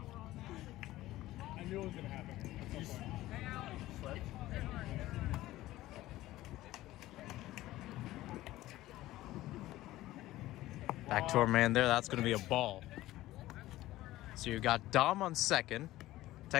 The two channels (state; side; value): quieter; right; 16.2 dB